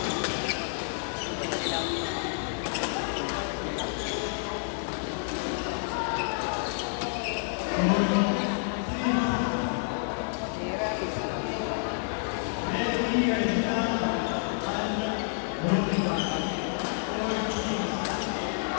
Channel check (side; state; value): right; silent; digital silence